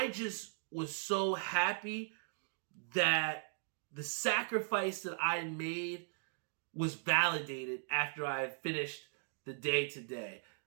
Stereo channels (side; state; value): left; silent; digital silence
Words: just was so happy that the sacrifice that I made was validated after I had finished the day today.